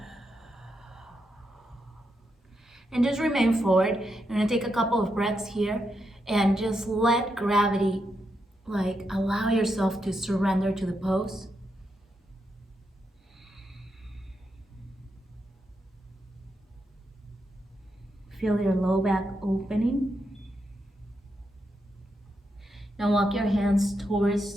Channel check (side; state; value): both; normal; correlation 0.83